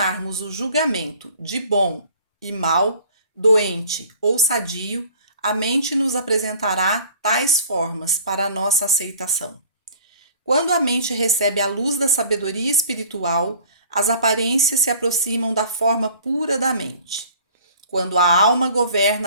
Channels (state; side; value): inverted; both; correlation -0.49